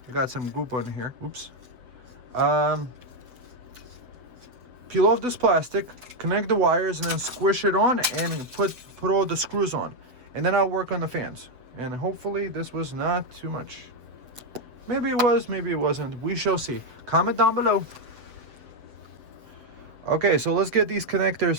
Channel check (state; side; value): late; left; 7.9 ms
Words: I got some goop on here. Oops. Peel off this plastic, connect the wires, and then squish it on and put all the screws on. And then I'll work on the fans. And hopefully this was not too much. Maybe it was, maybe it wasn't. We shall see. Comment down below. Okay, so let's get these